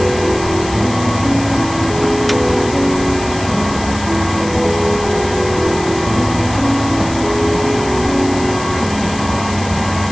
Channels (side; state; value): left; noise; hiss, 14 dB below the sound